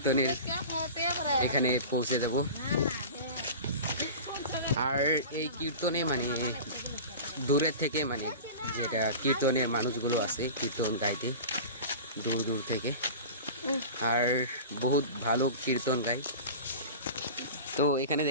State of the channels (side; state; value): both; inverted; correlation -0.34